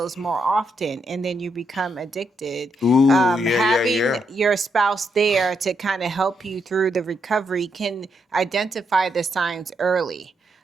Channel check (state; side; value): normal; both; correlation 0.80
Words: more often and then you become addicted. Ooh, yeah, yeah, Having yeah. your spouse there to kind of help you through the recovery can identify the signs early.